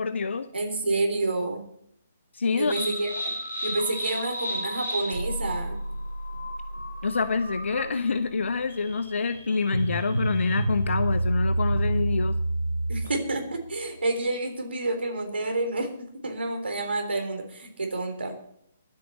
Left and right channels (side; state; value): both; inverted; correlation -0.81